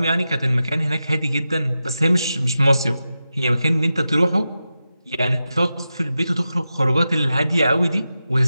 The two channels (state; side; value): inverted; both; correlation -0.91